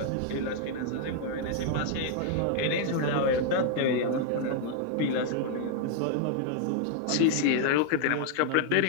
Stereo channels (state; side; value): different; both; correlation 0.00